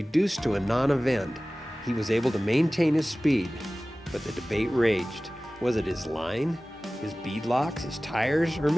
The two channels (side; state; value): both; normal; correlation 0.97